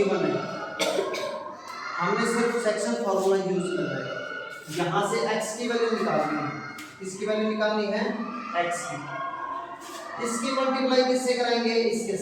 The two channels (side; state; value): both; identical; correlation 1.00